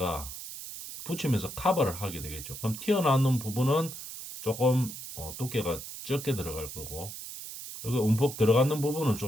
붙이면서 커버를 하게 되겠죠. 그럼 튀어나오는 부분은 조금 두께가 적게 들어갈 거고 여기 움푹 들어가는 부분은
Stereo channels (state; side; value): noise; right; hiss, 10 dB below the sound